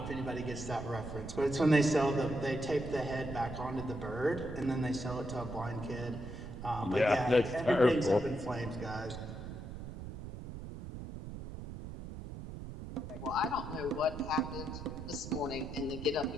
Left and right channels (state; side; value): noise; right; rumble, 9 dB below the sound